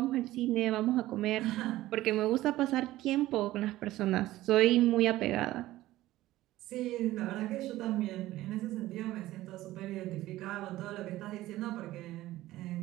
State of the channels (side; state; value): left; quieter; 16.1 dB